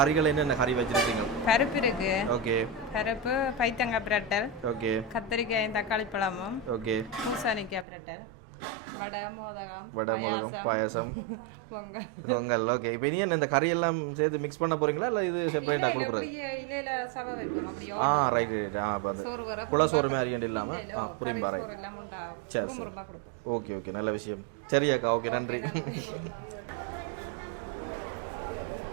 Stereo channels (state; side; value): drops out; left; at 7.9 s